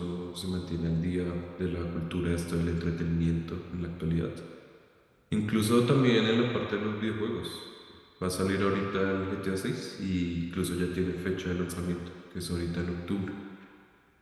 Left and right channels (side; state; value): both; identical; correlation 1.00